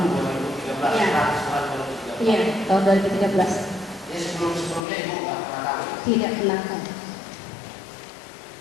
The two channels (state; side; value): drops out; right; at 4.8 s